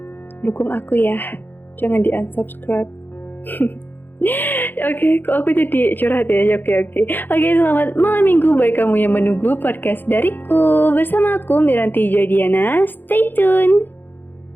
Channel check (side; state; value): right; late; 0.091 ms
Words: dukung aku ya. Jangan di-unsubscribe. Oke, kok aku jadi curhat ya? Oke, selamat malam minggu bagi kamu yang menunggu podcast dariku. Bersama aku Miranti Jodiana. Stay tune.